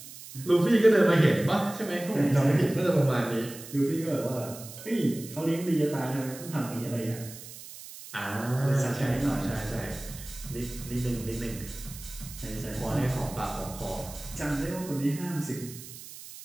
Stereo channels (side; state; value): right; noise; hiss, 14 dB below the sound